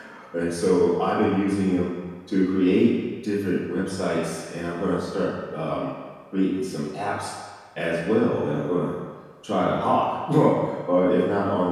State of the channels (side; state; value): both; identical; correlation 1.00